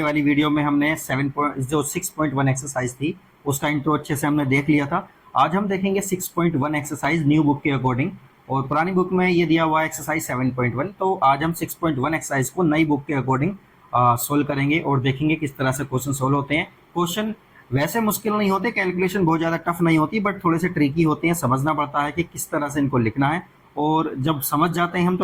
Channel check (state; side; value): identical; both; correlation 1.00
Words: वाली वीडियो में हमने 6.1 एक्सरसाइज थी उसका इंट्रो अच्छे से हमने देख लिया था। आज हम देखेंगे 6.1 एक्सरसाइज न्यू बुक के अकॉर्डिंग, और पुरानी बुक में ये दिया हुआ है एक्सरसाइज 7.1। तो आज हम 6.1 एक्सरसाइज को नई बुक के अकॉर्डिंग सोल्व करेंगे और देखेंगे किस तरह से क्वेश्चन सोल्व होते हैं। क्वेश्चन वैसे मुश्किल नहीं होते, कैलकुलेशन बहुत ज़्यादा टफ नहीं होती, बट थोड़े से ट्रिकी होते हैं। समझना पड़ता है कि किस तरह से इनको लिखना है, और जब समझ जाते हैं हम